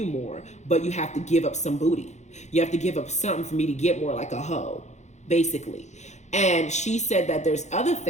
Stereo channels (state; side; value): late; right; 0.33 ms